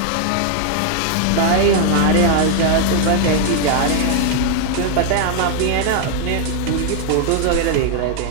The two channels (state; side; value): different; both; correlation 0.00